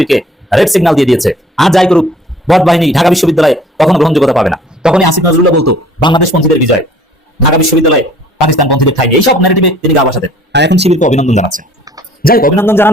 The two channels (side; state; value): both; normal; correlation 0.54